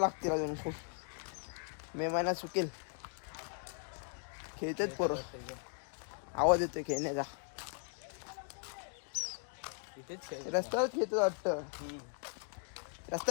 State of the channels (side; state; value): right; silent; 52 dB below the other